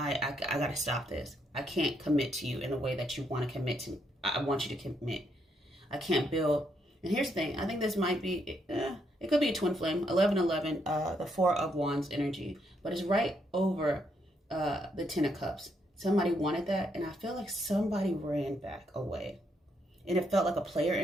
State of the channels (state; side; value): normal; both; correlation 0.76